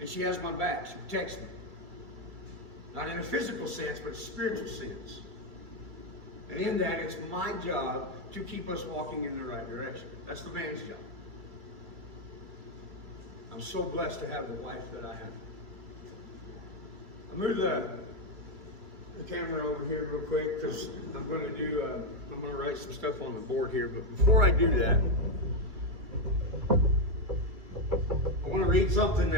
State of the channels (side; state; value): left; late; 2.3 ms